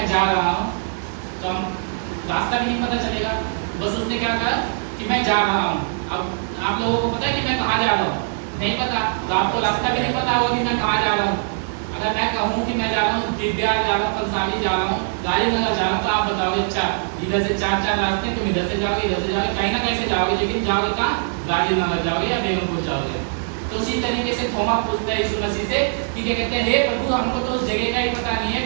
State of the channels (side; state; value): left; silent; digital silence